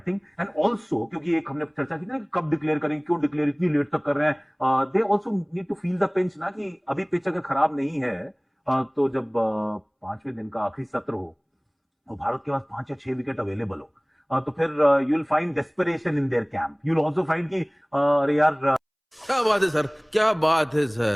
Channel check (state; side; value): identical; both; correlation 1.00